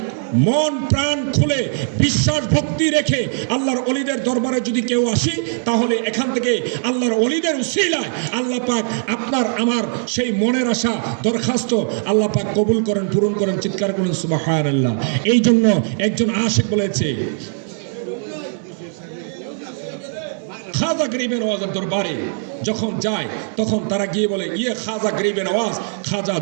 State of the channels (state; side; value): silent; left; digital silence